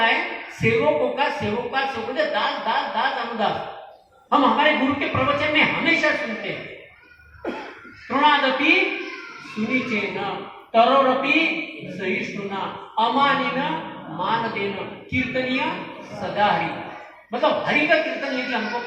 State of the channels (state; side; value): identical; both; correlation 1.00